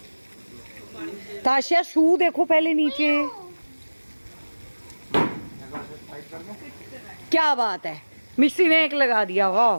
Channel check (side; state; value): both; inverted; correlation -1.00